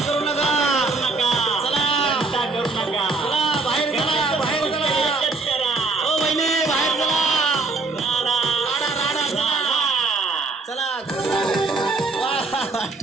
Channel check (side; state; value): left; quieter; 3.7 dB